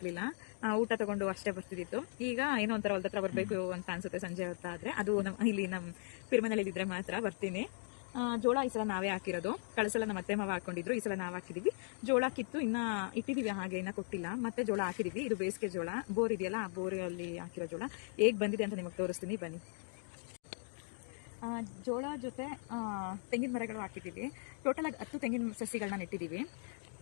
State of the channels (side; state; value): right; silent; 52 dB below the other